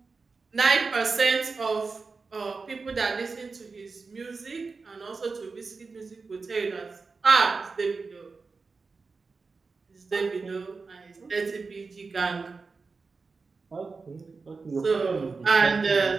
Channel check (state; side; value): quieter; left; 4.4 dB